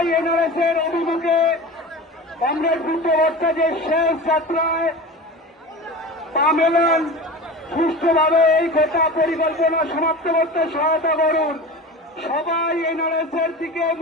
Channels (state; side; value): normal; both; correlation 0.32